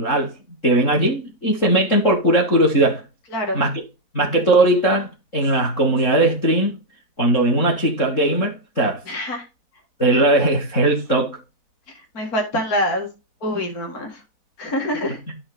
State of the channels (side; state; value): right; late; 4.1 ms